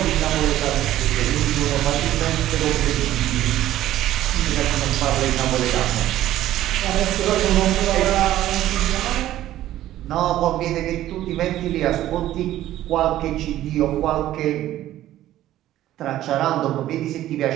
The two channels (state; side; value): quieter; left; 13.7 dB